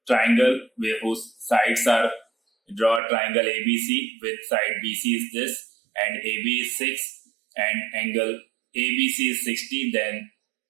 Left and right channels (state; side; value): drops out; left; at 3.0 s